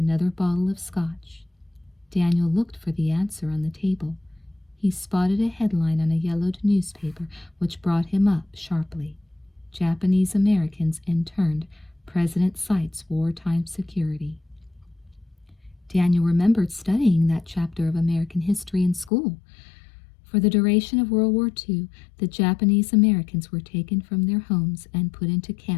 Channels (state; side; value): drops out; right; at 19.1 s